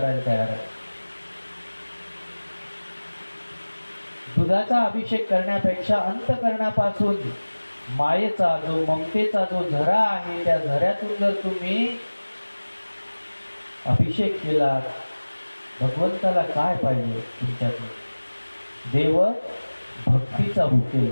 तयार आहे. दुधाचा अभिषेक करण्यापेक्षा अंतकरणापासून मायेचा जो ममतेचा जो झरा आहे त्या झऱ्यातून जर तुम्ही अभिषेक केला, भगवंताला काय पाहिजे तुमच्यातून? देव भक्तीचा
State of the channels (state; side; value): inverted; both; correlation -1.00